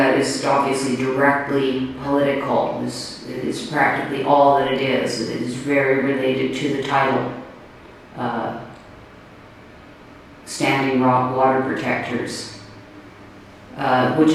is obviously directly political. It is practically all that it is. It is very related to the title, Standing Rock Water Protectors, which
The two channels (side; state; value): both; identical; correlation 1.00